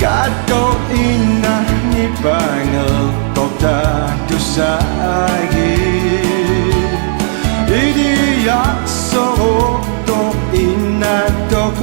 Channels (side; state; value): left; silent; 60 dB below the other